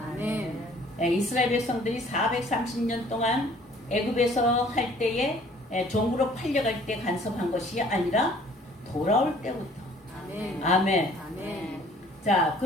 아멘. 이스라엘 백성들이 430년 동안 애굽에서 할 때에 종으로 팔려갈 때 간섭한 것이 아니라 돌아올 때부터. 아멘. 아멘. 아멘. 자,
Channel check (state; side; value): normal; both; correlation 0.55